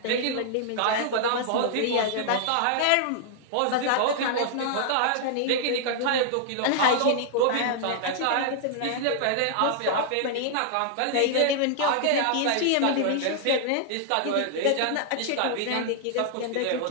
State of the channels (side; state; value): both; different; correlation -0.01